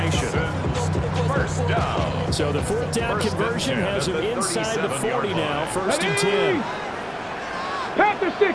First down. So the fourth down conversion has him inside the 40 now. First and 10. Panther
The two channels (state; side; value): identical; both; correlation 1.00